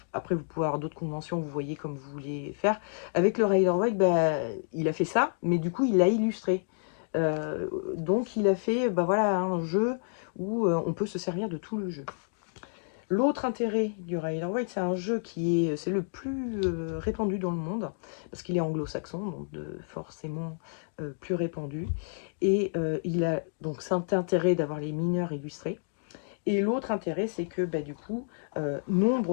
Après, vous pouvez avoir d'autres conventions, vous voyez comme vous voulez faire. Avec le Rider-Waite, il a fait ça, mais du coup, il l'a illustré. Donc, il a fait voilà, un jeu où on peut se servir de tout le jeu. L'autre intérêt du Rider-Waite, c'est un jeu c'est le plus répandu dans le monde, parce qu'il est anglo-saxon, donc forcément plus répandu. Et il a donc cet intérêt d'avoir les mineurs illustrés. Et l'autre intérêt, c'est que du coup,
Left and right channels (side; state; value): right; silent; digital silence